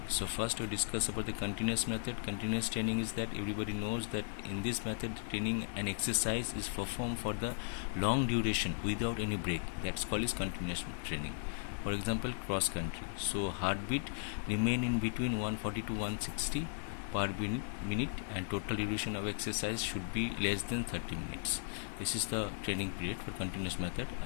So, first, we discuss about the continuous method. Continuous training is that everybody knows that in this method, training and exercise is performed for the long duration without any break. That's called is continuous training. For example, cross country. So heartbeat remain in between 140 to 160 per minute, and total duration of exercise should be less than 30 minutes. This is the training period for continuous method.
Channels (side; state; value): right; silent; digital silence